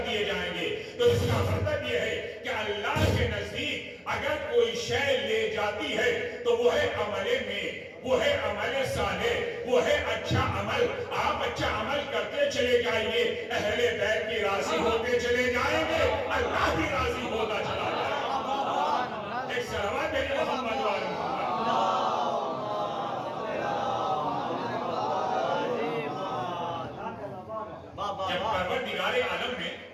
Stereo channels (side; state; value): both; identical; correlation 1.00